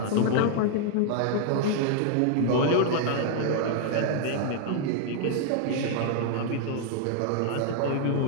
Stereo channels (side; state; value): both; different; correlation 0.00